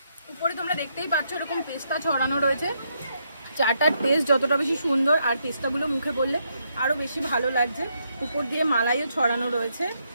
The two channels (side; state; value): both; inverted; correlation -0.77